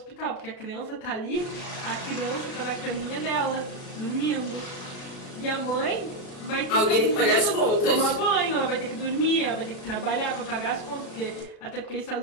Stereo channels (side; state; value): right; late; 37 ms